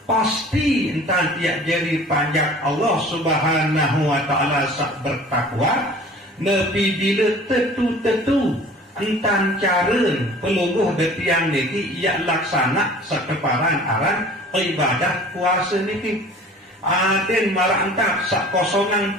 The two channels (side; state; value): both; normal; correlation 0.45